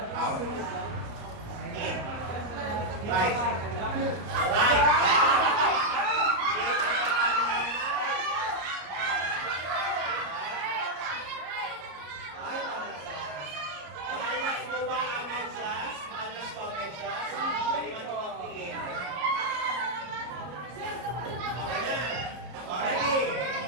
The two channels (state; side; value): late; left; 33 ms